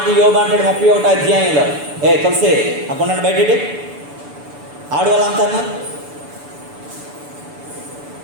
యోబు అంటాడు 31వ అధ్యాయంలో. తులసి అక్కడ బయట ఆడవాళ్ళంతా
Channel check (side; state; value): left; late; 6.9 ms